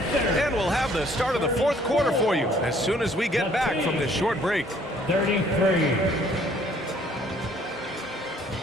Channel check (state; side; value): normal; both; correlation 0.60